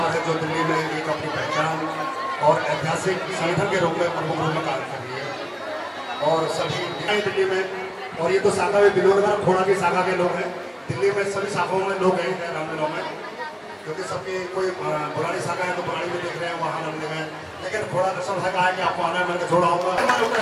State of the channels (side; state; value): both; identical; correlation 1.00